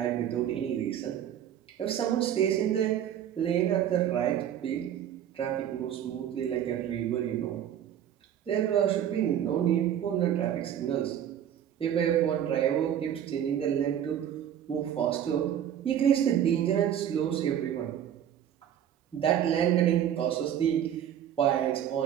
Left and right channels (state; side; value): quieter; left; 10.1 dB